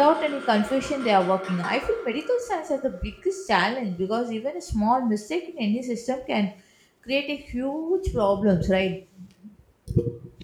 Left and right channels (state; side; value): identical; both; correlation 1.00